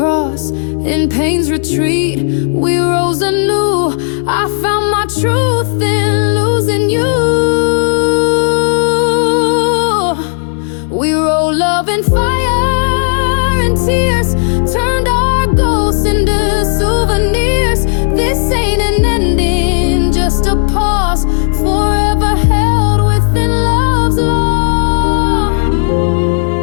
In pain's retreat, we rose anew. I found my truth in losing you. We roll love in fire and tears, turned our gold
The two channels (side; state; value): right; silent; digital silence